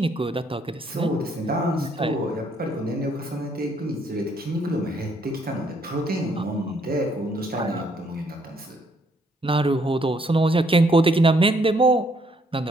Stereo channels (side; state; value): both; normal; correlation 0.69